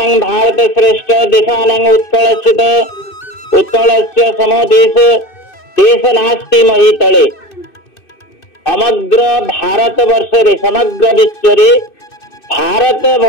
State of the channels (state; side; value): late; right; 2.6 ms